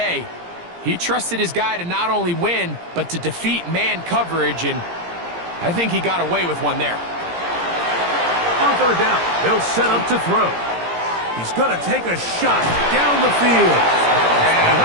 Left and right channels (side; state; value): left; late; 17 ms